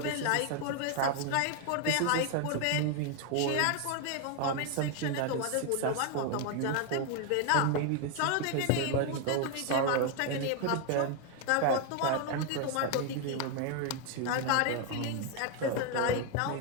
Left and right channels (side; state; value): both; different; correlation 0.01